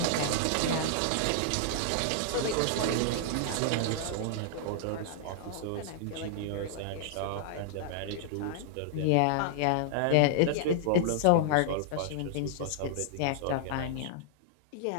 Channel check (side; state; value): both; different; correlation -0.01